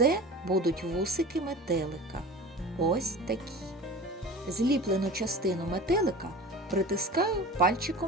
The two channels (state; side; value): normal; both; correlation 0.37